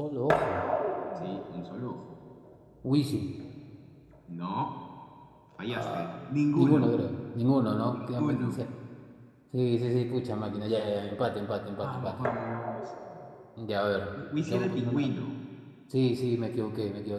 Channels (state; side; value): identical; both; correlation 1.00